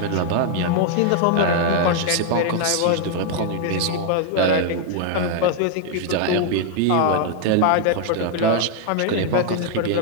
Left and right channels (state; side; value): different; both; correlation 0.00